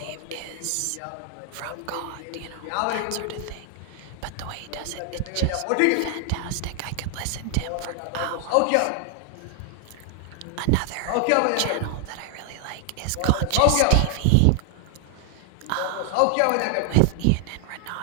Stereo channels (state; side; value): different; both; correlation 0.00